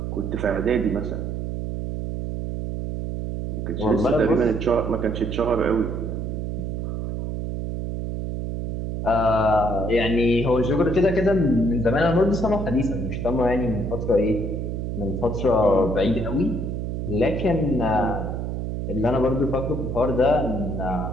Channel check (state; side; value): noise; right; hum, 3 dB below the sound